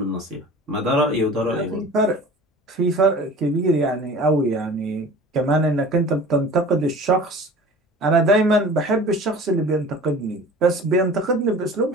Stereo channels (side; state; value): both; normal; correlation 0.41